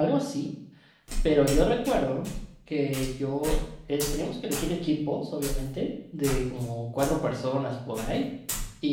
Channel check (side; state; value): both; identical; correlation 1.00